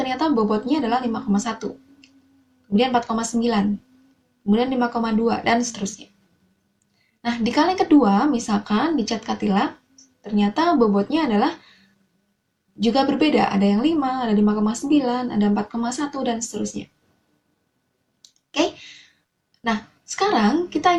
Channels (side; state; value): both; identical; correlation 1.00